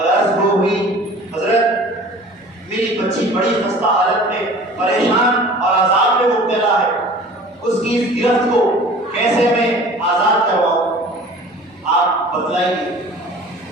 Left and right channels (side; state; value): both; normal; correlation 0.44